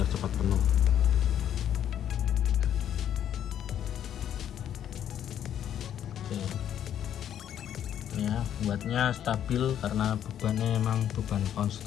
cepat penuh. Ya, buatnya stabil karena bebannya emang beban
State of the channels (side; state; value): right; quieter; 10.1 dB